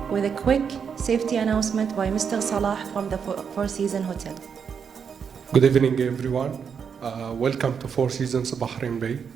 with a quick safety announcement by Mr. Salah from the Four Seasons Hotel. Good evening, everyone. Welcome to Four Seasons Bahrain Bay.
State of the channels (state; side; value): quieter; left; 6.8 dB